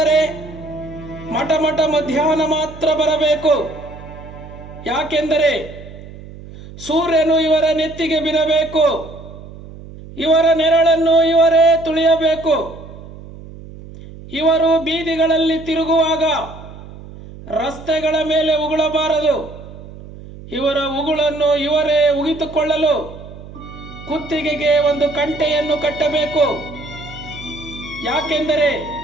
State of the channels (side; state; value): right; noise; hum, 16 dB below the sound